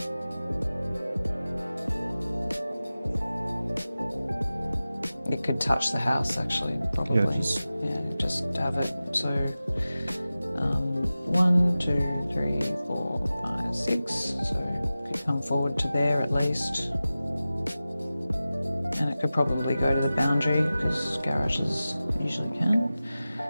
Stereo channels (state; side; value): inverted; both; correlation -0.96